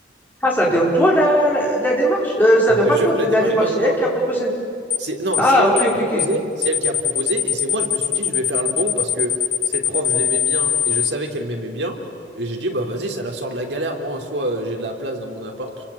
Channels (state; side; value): normal; both; correlation 0.46